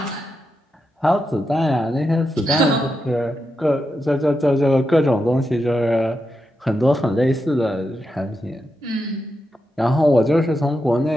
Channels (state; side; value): normal; both; correlation 0.86